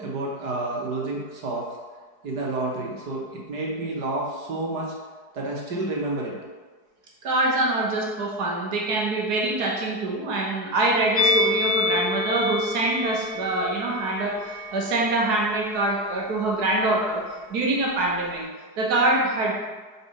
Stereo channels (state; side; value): late; left; 4.7 ms